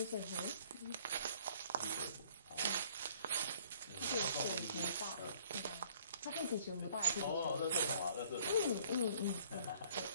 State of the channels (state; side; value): inverted; both; correlation -0.58